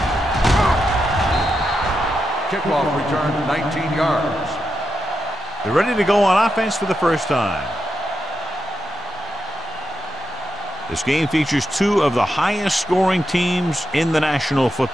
Kickoff return, 19 yards. They're ready to go on offense for the first time. This game features two of the highest scoring teams in the National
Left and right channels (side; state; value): both; normal; correlation 0.86